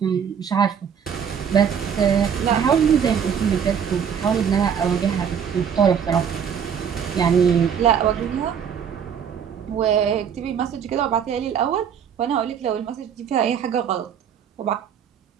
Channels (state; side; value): quieter; left; 7.7 dB